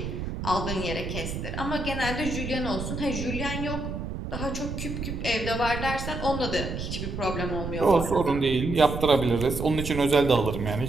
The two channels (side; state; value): right; noise; rumble, 5 dB below the sound